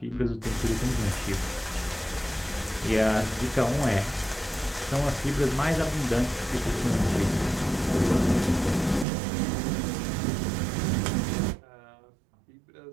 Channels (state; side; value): drops out; left; at 9.1 s